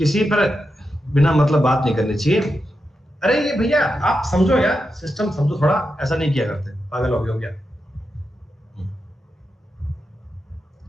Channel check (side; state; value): both; normal; correlation 0.87